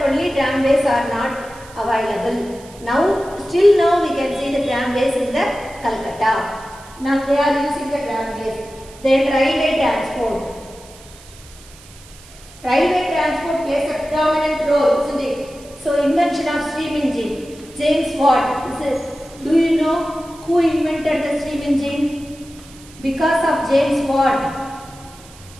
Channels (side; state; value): right; noise; hiss, 22 dB below the sound